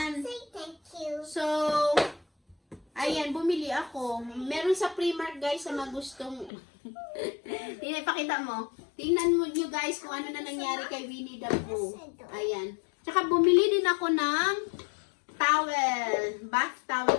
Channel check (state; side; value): drops out; right; at 6.5 s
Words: So, ayan, bumili ako. Meron sa Primark, guys, sa mga gustong... Ipakita mo. Tingnan mo nyo, guys, kung ano na nangyari kay Winnie the Pooh. Ayan. Tsaka bumili din ako ng towel. Bath towel